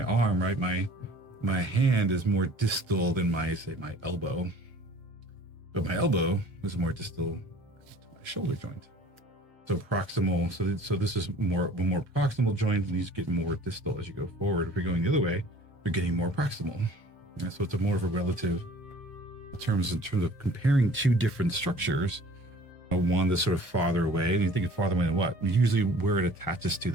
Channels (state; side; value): normal; both; correlation 0.49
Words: arm, right? My hand is more distal than my elbow. But my elbow is more distal to my shoulder joint. So proximal, so this is a more proximal joint, and these get more distal as you go forward. If you're going the other way, you're getting more proximal. And so it's a more of a relative in terms of comparing two different structures. One that's sort of farther away, and you think of farther away than what? Usually where it attaches to